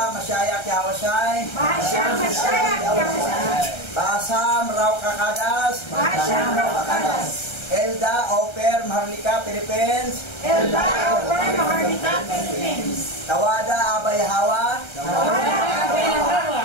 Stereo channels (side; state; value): right; late; 1.3 ms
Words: Masyaya, Kiyawasay. Basa, Masyaya, Kiyawasay. Basa, Mraw Kakadas. Basa, Mraw Kakadas. Elda, Oper, Maharlika, Philippines. Elda, Oper, Maharlika, Philippines. Tawada, Abay Hawa. Tawada, Abay Hawa.